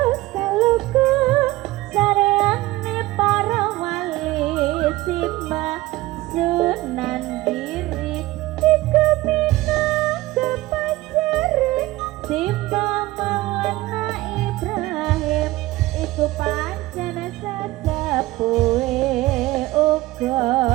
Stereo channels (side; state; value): left; quieter; 18.3 dB